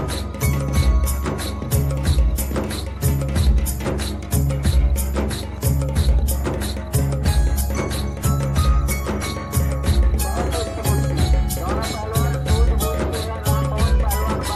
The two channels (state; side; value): identical; both; correlation 1.00